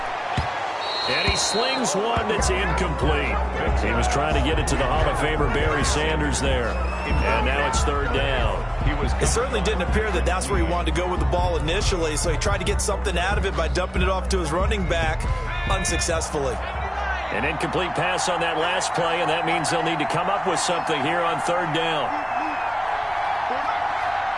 And he slings one that's incomplete. He was trying to get it to the Hall of Famer Barry Sanders there. And now it's 3rd down. It certainly didn't appear that that's where he wanted to go with the ball initially, so he tried to get something out of it by dumping it off to his running back unsuccessfully. An incomplete pass on that last play, and that means they'll need to come up with something here on 3rd down.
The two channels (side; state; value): both; identical; correlation 1.00